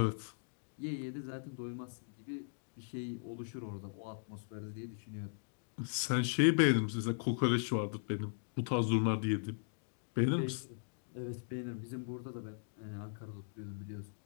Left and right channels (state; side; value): silent; right; digital silence